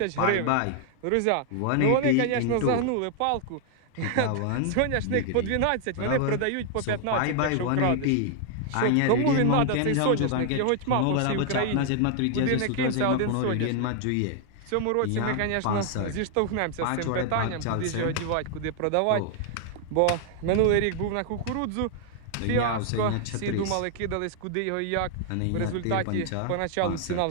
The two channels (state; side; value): different; both; correlation 0.00